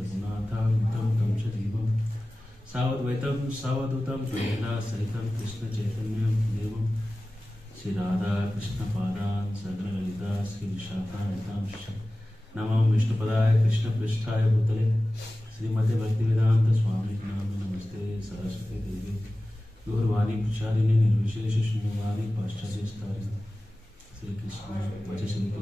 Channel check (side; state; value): both; normal; correlation 0.96